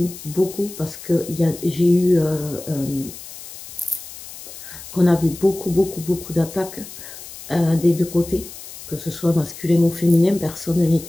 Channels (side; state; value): left; noise; hiss, 14 dB below the sound